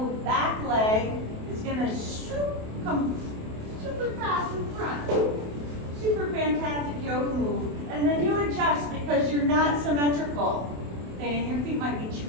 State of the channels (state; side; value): late; left; 28 ms